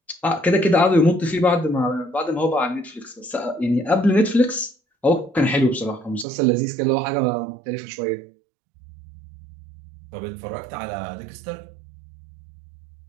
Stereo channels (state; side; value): drops out; left; at 6.2 s